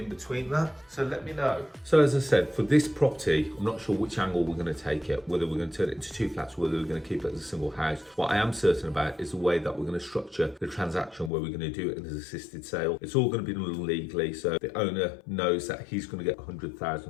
between that? So let me know. So as I said, for this property, I'm not sure which angle we're going to take it, whether we're going to turn it into 2 flats, whether we're going to keep it as a single house. What I am certain about is the way that we're going to structure the transaction, where we're going to do it as an assisted sale. It's all going to be done legally, so the owner knows that he's going to get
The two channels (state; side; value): drops out; right; at 11.3 s